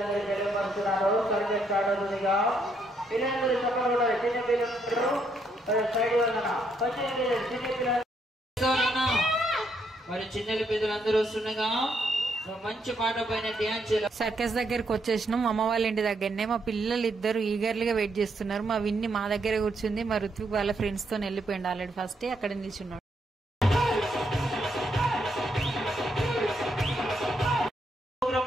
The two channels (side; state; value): both; normal; correlation 0.75